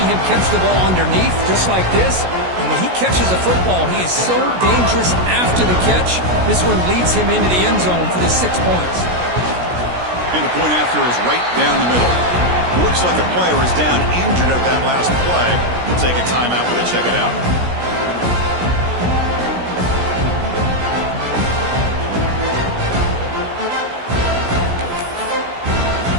him catch the ball underneath, just like this. And when he catches a football, he is so dangerous after the catch. This one leads him into the end zone for the 6 points. And the point after is right down the middle. Looks like a player is down injured at that last play. We'll take a timeout when they check it out.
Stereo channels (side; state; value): left; late; 16 ms